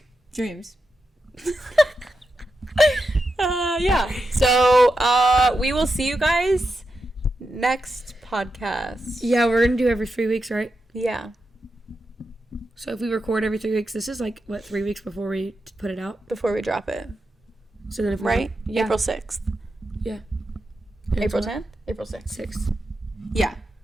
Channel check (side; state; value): both; normal; correlation 0.88